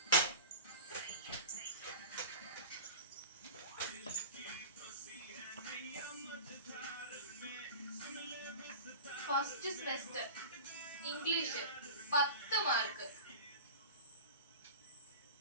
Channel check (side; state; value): both; inverted; correlation -0.33